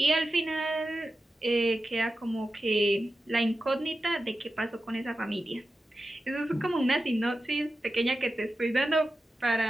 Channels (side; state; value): both; normal; correlation 0.92